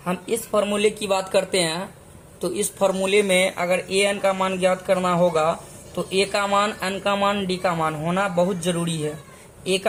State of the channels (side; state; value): both; identical; correlation 1.00